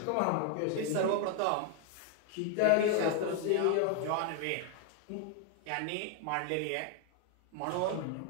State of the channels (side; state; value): both; different; correlation 0.00